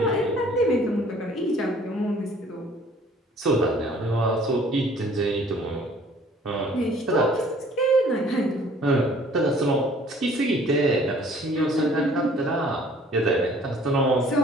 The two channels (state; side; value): normal; both; correlation 0.55